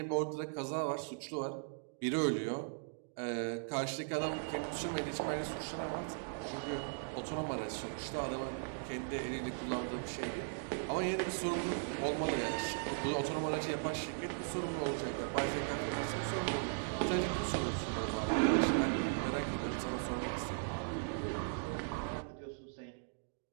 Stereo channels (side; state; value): left; silent; digital silence